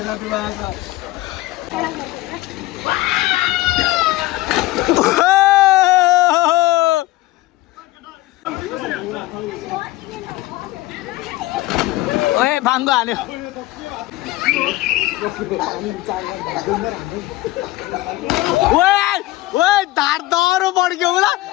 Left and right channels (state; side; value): quieter; right; 17.8 dB